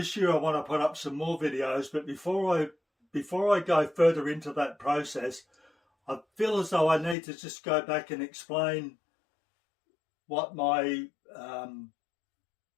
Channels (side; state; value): right; drops out; at 7.2 s